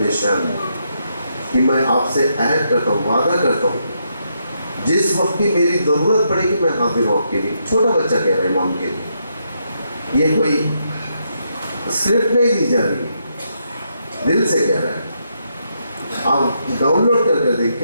کہ میں آپ سے عہد کرتا ہوں، وعدہ کرتا ہوں، جس وقت کی میری ضرورت پڑے گی میں حاضر ہوں آپ کے لیے. چھوٹا بچہ کہہ رہا ہے امام کے لیے، یہ کوئی اسکرپٹ نہیں دی جا رہی، دل سے کہہ رہا ہے. آپ ڈاؤن لوڈ کر دیکھ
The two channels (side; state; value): both; inverted; correlation -0.79